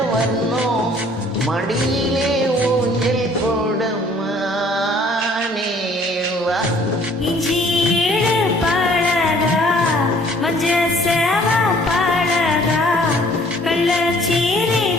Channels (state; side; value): normal; both; correlation 0.57